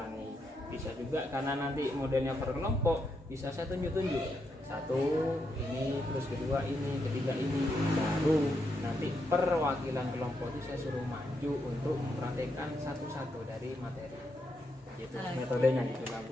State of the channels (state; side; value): normal; both; correlation 0.81